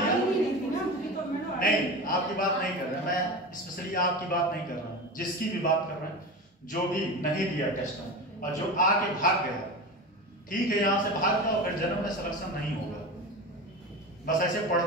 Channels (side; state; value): both; normal; correlation 0.27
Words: नहीं, आपकी बात नहीं कर रहा मैं, स्पेशली आपकी बात नहीं कर रहा हूँ, जिसकी भी बात कर रहे हैं। जो भी नहीं दिया टेस्ट में और जो आके भाग गया, ठीक है, यहाँ से भाग जाओ, फिर जन्म में सिलेक्शन नहीं होगा। बस ऐसे